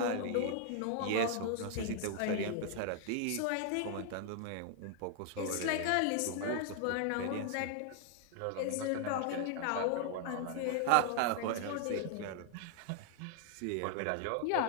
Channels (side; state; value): both; different; correlation 0.00